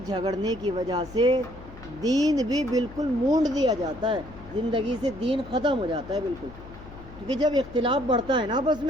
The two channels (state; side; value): noise; left; hum, 17 dB below the sound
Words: جھگڑنے کی وجہ سے دین بھی بالکل مونڈ دیا جاتا ہے، زندگی سے دین ختم ہو جاتا ہے بالکل۔ کیونکہ جب اختلاف بڑھتا ہے نا آپس